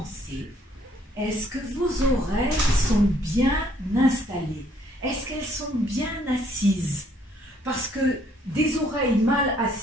est-ce que vos oreilles sont bien installées? Est-ce qu'elles sont bien assises? Parce que des oreilles mal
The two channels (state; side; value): normal; both; correlation 0.65